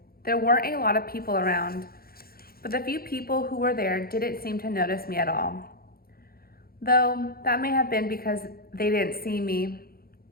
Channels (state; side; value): late; right; 0.44 ms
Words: There weren't a lot of people around, but the few people who were there didn't seem to notice me at all. Though that may have been because they didn't see me.